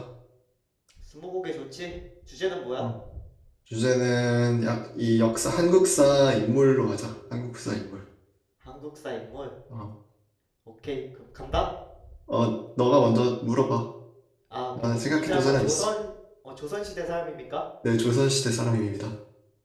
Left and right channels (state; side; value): identical; both; correlation 1.00